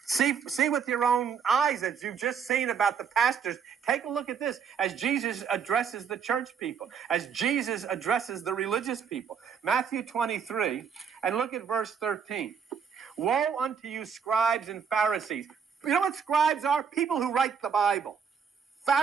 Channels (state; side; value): quieter; left; 6.8 dB